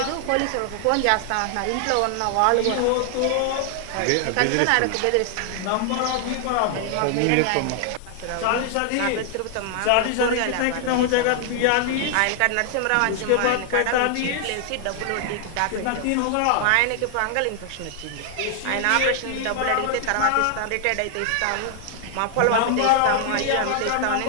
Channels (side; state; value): both; different; correlation 0.00